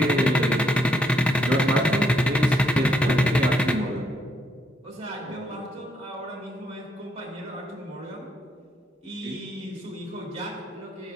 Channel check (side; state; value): both; normal; correlation 0.74